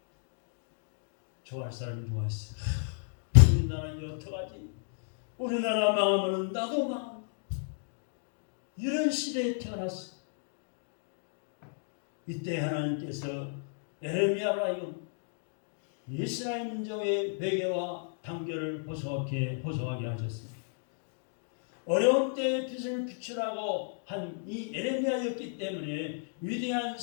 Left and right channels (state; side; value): silent; right; digital silence